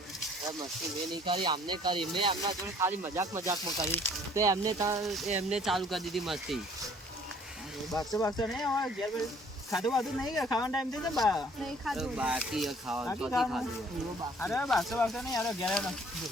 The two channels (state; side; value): normal; both; correlation 0.57